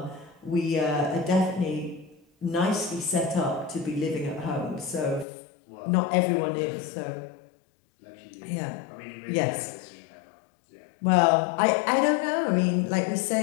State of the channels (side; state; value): right; drops out; at 5.2 s